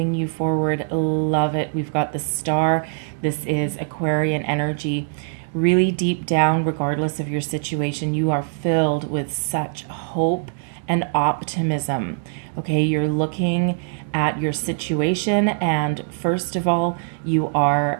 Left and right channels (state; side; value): silent; left; digital silence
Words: you forward? Love it. We've got the Star. This is Aquarian energy. Really deep down, regardless of your situation, you are filled with such hope and optimism. Okay, you're looking at your situation, and first of all,